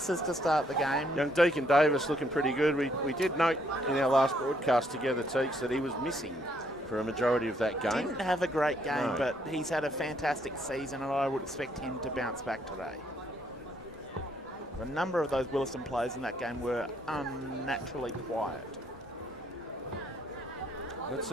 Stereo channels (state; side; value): normal; both; correlation 0.70